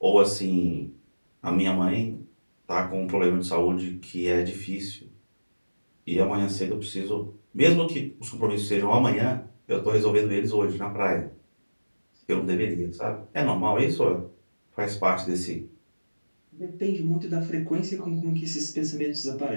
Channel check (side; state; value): both; inverted; correlation -1.00